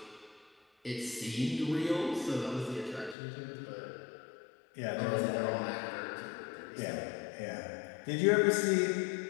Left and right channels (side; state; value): right; drops out; at 3.2 s